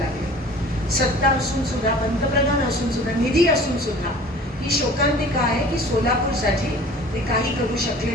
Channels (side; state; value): both; normal; correlation 0.45